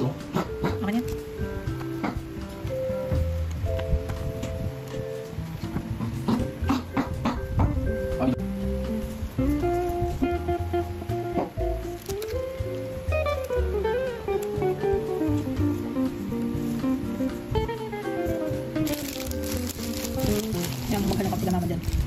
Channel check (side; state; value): both; identical; correlation 1.00